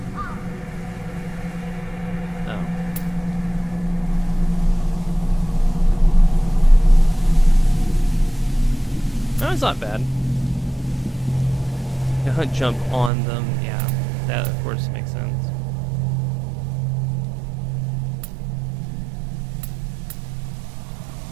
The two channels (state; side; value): drops out; left; at 13.1 s